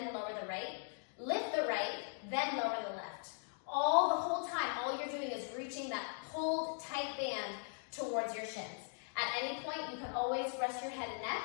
lower the right, lift the right, then lower the left. The whole time, all you're doing is reaching that pulled tight band towards your shins. At any point, you can always rest your head and neck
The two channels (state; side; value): silent; right; 51 dB below the other